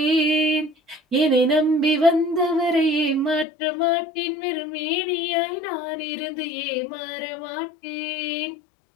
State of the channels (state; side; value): drops out; right; at 3.5 s